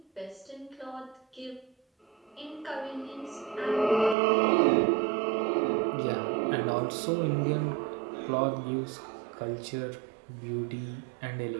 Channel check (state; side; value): drops out; left; at 4.2 s